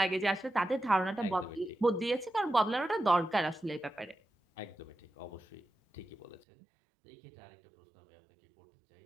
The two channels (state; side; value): drops out; left; at 6.5 s